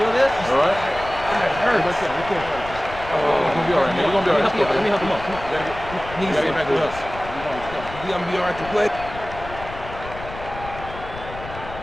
this? All right. It hurts. You're gonna be all right, man. You're gonna be all right. Let me help him up. Come on. You gotta get back with us. You're gonna be all right to play.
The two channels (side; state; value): left; noise; rumble, 13 dB below the sound